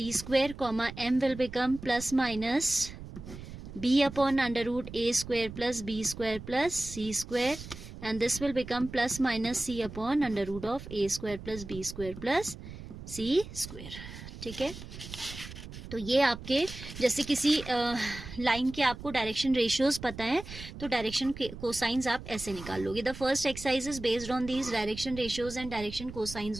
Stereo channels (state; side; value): noise; right; rumble, 12 dB below the sound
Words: square, comma M will become plus minus B/√ A square plus B square plus C square, and this will become plus minus C/√ of A square plus B square plus C square, ठीक है. तो ये आपके जैसे किसी लाइन के आपको डायरेक्शन रेशियोज पता है तो डायरेक्शन कोसाइंस आप ऐसे निकाल लोगे. The first exercise is based on these direction ratios and direction